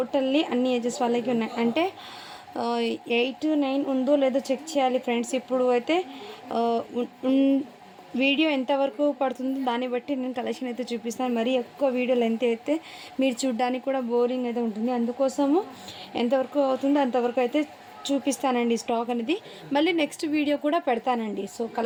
అన్ని ఏజెస్ వాళ్ళకి ఉన్నాయి. అంటే 8-9 ఉందో లేదో చెక్ చేయాలి ఫ్రెండ్స్. ఇప్పుడు అయితే వీడియో ఎంతవరకు పడుతుందో దాన్ని బట్టి నేను కలెక్షన్ అయితే చూపిస్తాను. మరీ ఎక్కువ వీడియో లెంత్ అయితే మీరు చూడడానికి కూడా బోరింగ్ అయితే ఉంటుంది. అందుకోసము ఎంతవరకు అవుతుందో అంతవరకు అయితే చూపిస్తానండి స్టాక్ అనేది. మళ్ళీ నెక్స్ట్ వీడియో కూడా పెడతానండి. సో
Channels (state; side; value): identical; both; correlation 1.00